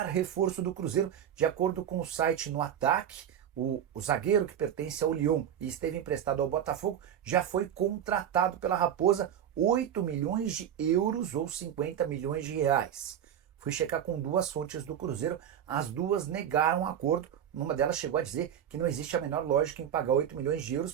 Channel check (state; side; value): quieter; left; 9.6 dB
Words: reforço do Cruzeiro. De acordo com o site No Ataque, o zagueiro que pertence ao Lyon e esteve emprestado ao Botafogo já foi contratado pela Raposa 8 milhões de euros ou 50 milhões de reais. Fui checar com duas fontes do Cruzeiro, as duas negaram o acordo. Uma delas chegou a dizer que não existe a menor lógica em pagar 8 milhões de euros